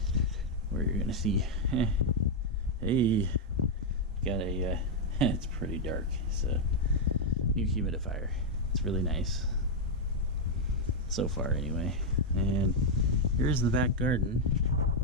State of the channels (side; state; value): both; normal; correlation -0.01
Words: where you're gonna see, hey, got a, it's pretty dark. It's a new humidifier. It's really nice, so far anyway. And here's the back garden.